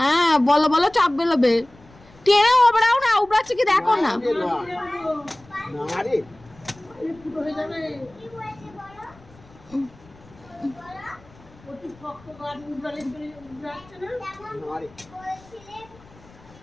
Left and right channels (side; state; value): left; noise; rumble, 25 dB below the sound